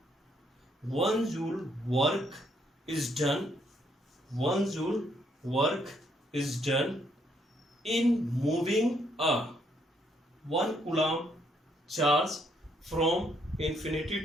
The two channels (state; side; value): normal; both; correlation 0.71